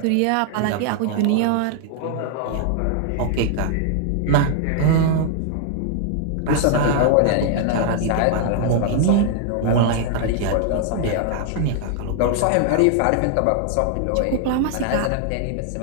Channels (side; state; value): both; different; correlation 0.00